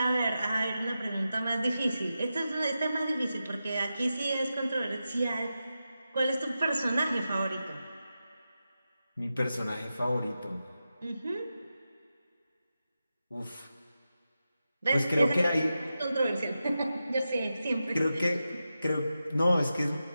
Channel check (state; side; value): inverted; both; correlation -0.91